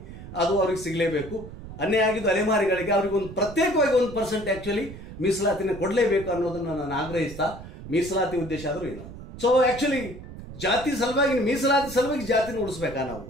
ಅದು ಅವ್ರಿಗೆ ಸಿಗಲೇಬೇಕು. ಅನ್ಯಾಯ ಆಗಿದ್ದು ಅಲೆಮಾರಿಗಳಿಗೆ ಅವರಿಗೆ ಒಂದು ಪ್ರತ್ಯೇಕವಾಗಿ 1% ಆಕ್ಚುಲಿ ಮೀಸಲಾತಿನ ಕೊಡಲೇಬೇಕು ಅನ್ನೋದನ್ನು ನಾನು ಆಗ್ರಹಿಸ್ತಾ, ಮೀಸಲಾತಿ ಉದ್ದೇಶ ಆದರೂ ಏನು. ಸೊ ಆಕ್ಚುಲಿ ಜಾತಿ ಸಲುವಾಗಿ, ಮೀಸಲಾತಿ ಸಲುವಾಗಿ ಜಾತಿನ ಉಳಿಸ್ಬೇಕಾ ನಾವು?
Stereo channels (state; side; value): noise; right; rumble, 13 dB below the sound